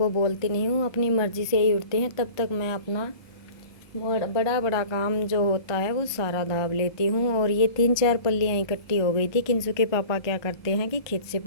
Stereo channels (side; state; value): right; late; 1.2 ms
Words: बोलती नहीं हूँ, अपनी मर्ज़ी से ही उठते हैं, तब तक मैं अपना बड़ा बड़ा काम जो होता है वो सारा दाब लेती हूँ। और ये 3-4 पल्लियाँ इकट्ठी हो गई थी। किंसू के पापा क्या करते हैं कि खेत से